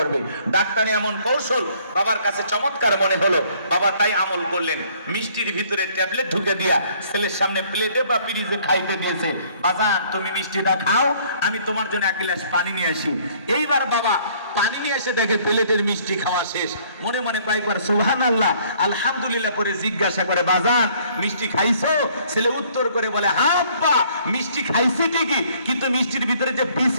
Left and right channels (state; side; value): inverted; both; correlation -0.60